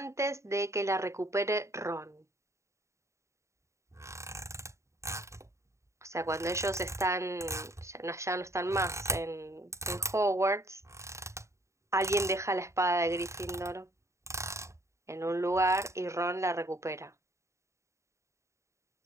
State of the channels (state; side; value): late; left; 0.14 ms